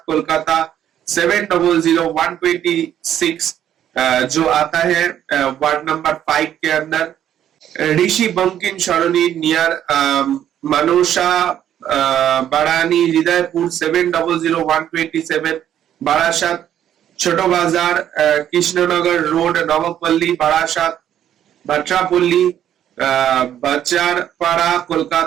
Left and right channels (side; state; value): left; quieter; 10.6 dB